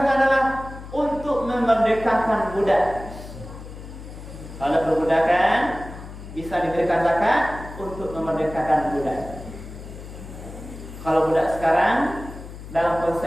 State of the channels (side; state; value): left; noise; hum, 13 dB below the sound